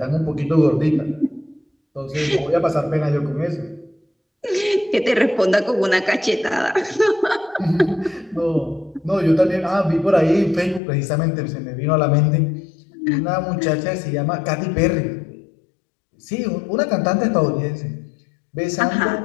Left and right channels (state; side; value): drops out; right; at 10.8 s